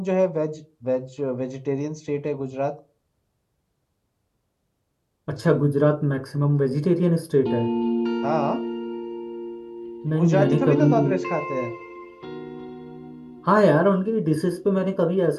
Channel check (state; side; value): identical; both; correlation 1.00